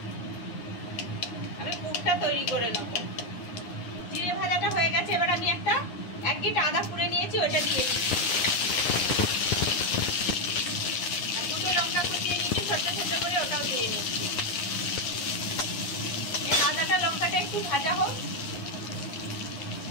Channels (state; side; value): late; right; 9.7 ms